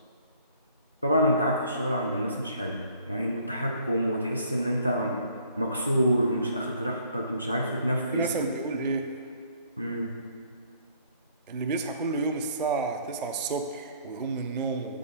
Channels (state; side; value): inverted; both; correlation -0.60